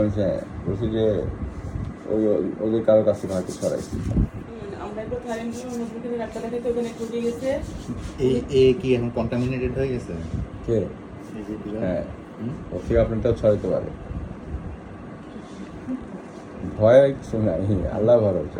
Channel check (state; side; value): identical; both; correlation 1.00